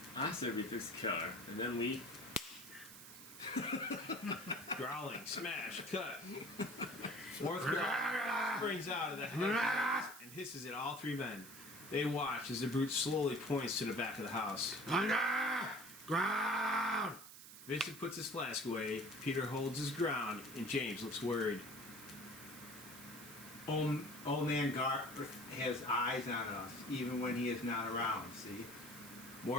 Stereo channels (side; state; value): right; noise; hiss, 15 dB below the sound